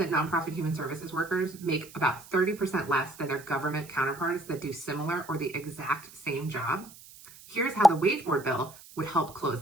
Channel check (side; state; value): right; noise; hiss, 20 dB below the sound